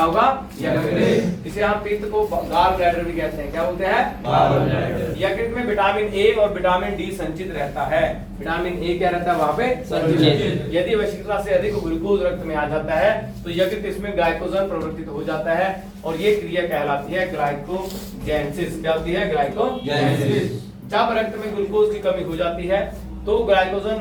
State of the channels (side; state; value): both; identical; correlation 1.00